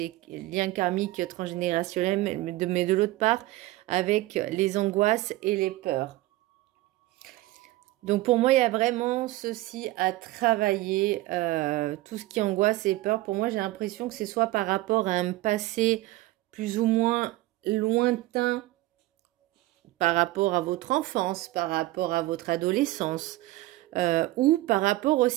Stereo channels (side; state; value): left; quieter; 18.0 dB